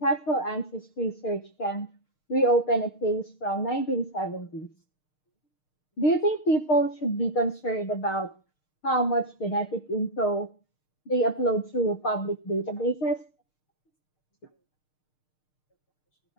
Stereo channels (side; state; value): right; late; 6.5 ms